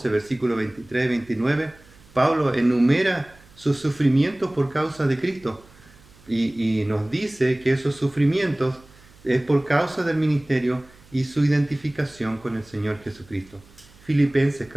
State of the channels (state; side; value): noise; right; hum, 26 dB below the sound